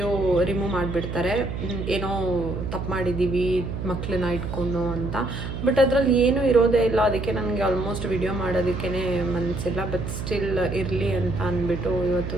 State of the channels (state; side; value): noise; right; hum, 5 dB below the sound